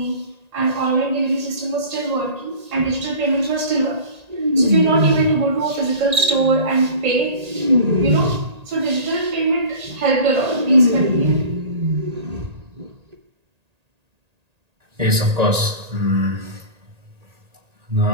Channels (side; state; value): left; late; 1.8 ms